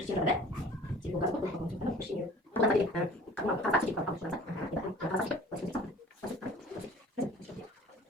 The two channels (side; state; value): both; normal; correlation 0.47